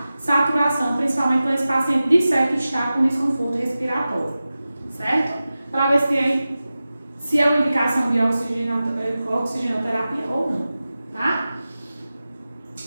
saturação, principalmente quando esse paciente disser que está com desconforto respiratório, certo? Para ver se é uma indicação de oxigenoterapia ou não, tá?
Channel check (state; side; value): inverted; both; correlation -0.95